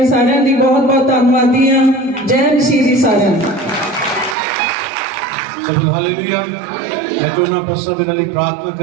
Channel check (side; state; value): left; drops out; at 4.4 s